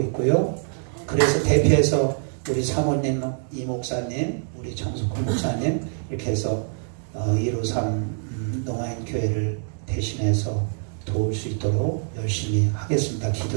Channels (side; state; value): left; silent; 59 dB below the other